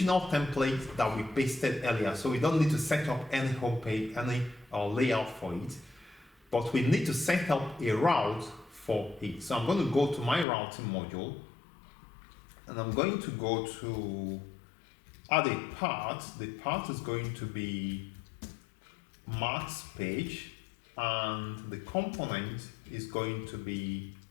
template that we pasted earlier. So we don't need to set up any home page, any layout for it, but we need to set up a route for it. So I'm going to go to my routing module and I'm going to go to add a part. The part is going to be maths page and the component is going to be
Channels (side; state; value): right; drops out; at 10.5 s